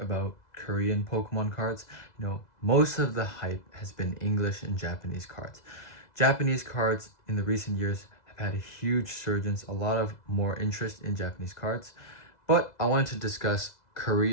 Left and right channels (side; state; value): right; late; 2.0 ms